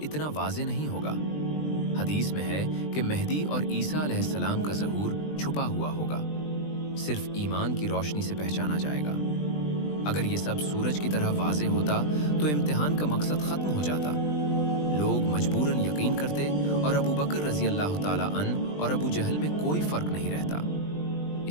इतना वाज़े नहीं होगा। हदीस में है कि मेहदी और ईसा अलैहिस्सलाम का ज़हूर छुपा हुआ होगा, सिर्फ ईमान की रोशनी से पहचाना जाएगा। अगर ये सब सूरज की तरह वाज़े होता तो इम्तिहान का मकसद ख़त्म हो जाता। लोग मजबूरन यकीन करते और अबू बकर रज़ी अल्लाह ताला अन और अबू जहल में कोई फ़र्क नहीं रहता।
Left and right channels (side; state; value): right; late; 20 ms